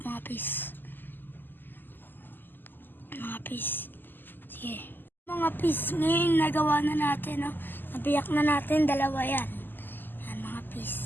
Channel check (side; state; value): right; late; 0.091 ms